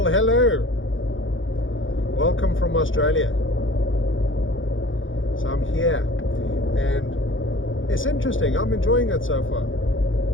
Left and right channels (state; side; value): late; right; 0.57 ms